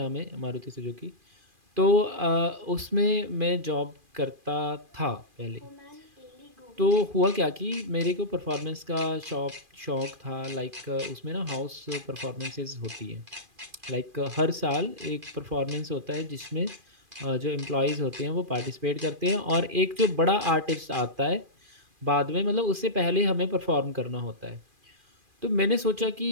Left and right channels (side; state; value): left; late; 2.4 ms